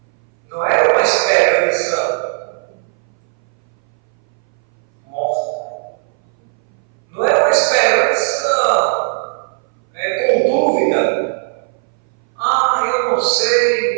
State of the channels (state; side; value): silent; left; 62 dB below the other